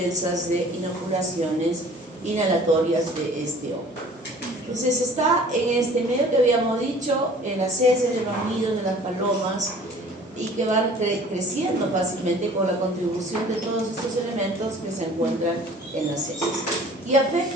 de inoculaciones inhalatorias de este hongo. Entonces, está en este medio que habíamos dicho, en las heces de los nidos de las palomas, y que van creciendo fácilmente con la contribución de todos estos elementos que se encuentran en las heces. Y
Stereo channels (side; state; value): both; normal; correlation 0.49